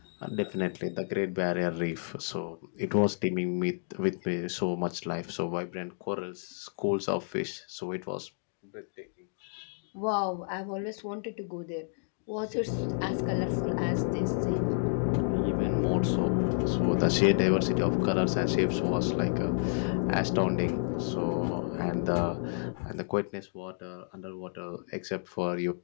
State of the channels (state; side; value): silent; right; digital silence